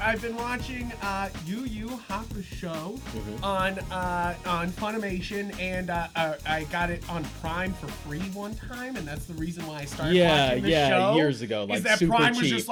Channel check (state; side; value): identical; both; correlation 1.00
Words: been watching Yu Yu Hakusho on Funimation, and I got it on Prime for free one time, and that's the reason why I started watching the show. Years ago, like is that super Prime was cheap. just